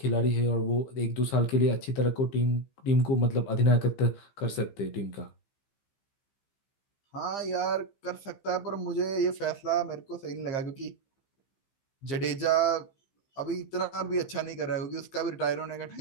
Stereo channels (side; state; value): right; late; 15 ms